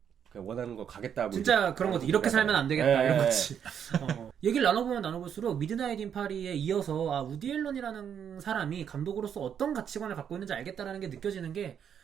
그냥 원하는 거 가겠다. 뭐 진짜 그런 거지. 이렇게 살면 안 되겠다. 이런 거지. 네. 얘기를 나눠보면 나눠볼수록 미드나잇 인 파리에 이어서 우디 앨런이라는 사람이 감독으로서 어떤 가치관을 갖고 있는지 알겠다라는 게 느껴지는 게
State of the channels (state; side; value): quieter; left; 8.3 dB